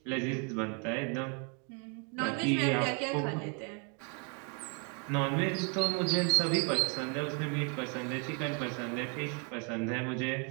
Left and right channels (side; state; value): left; quieter; 37.1 dB